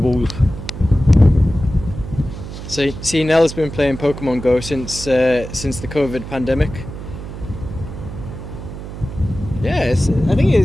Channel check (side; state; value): right; noise; hum, 10 dB below the sound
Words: So, see, Nell's been playing Pokemon Go since the COVID pandemic. Yeah, I think